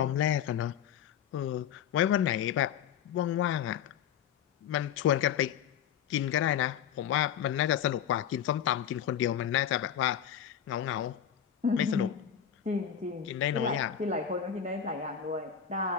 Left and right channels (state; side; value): quieter; right; 9.1 dB